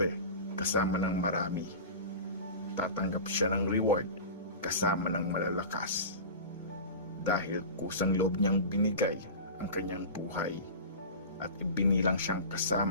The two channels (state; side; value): inverted; both; correlation -0.32